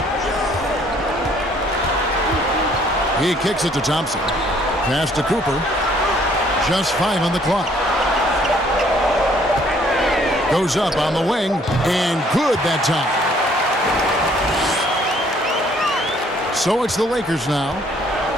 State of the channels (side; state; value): both; normal; correlation 0.62